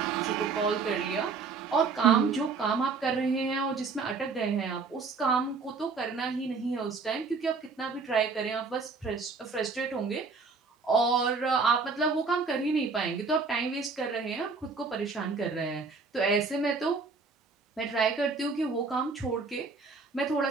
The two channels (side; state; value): left; quieter; 4.6 dB